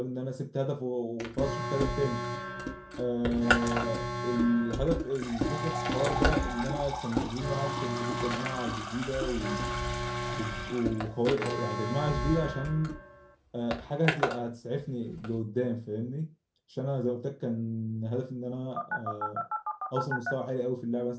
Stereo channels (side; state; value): both; identical; correlation 1.00